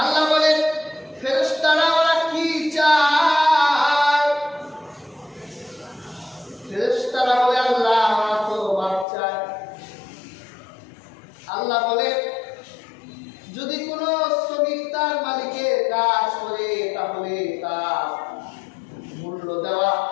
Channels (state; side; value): drops out; right; at 9.1 s